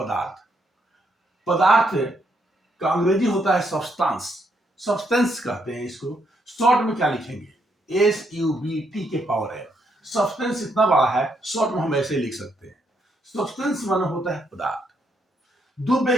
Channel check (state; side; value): normal; both; correlation 0.76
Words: पदार्थ का अंग्रेजी होता है सब्सटेंस। सब्सटेंस कहते हैं इसको। शॉर्ट में क्या लिखेंगे? SUBT के पावर है। सब्सटेंस इतना बड़ा है, शॉर्ट में हम ऐसे लिख सकते हैं। सब्सटेंस माने होता है पदार्थ।